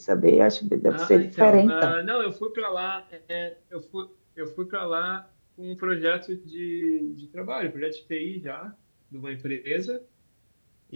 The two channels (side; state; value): both; inverted; correlation -1.00